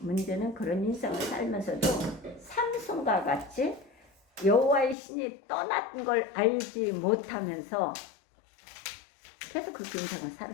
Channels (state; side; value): drops out; right; at 5.0 s